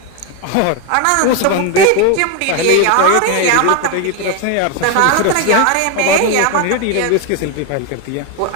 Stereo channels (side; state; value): both; different; correlation 0.02